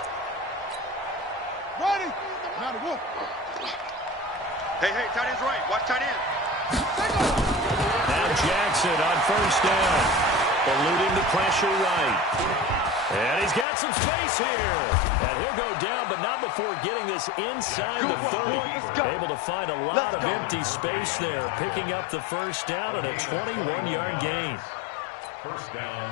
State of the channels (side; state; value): right; drops out; at 13.7 s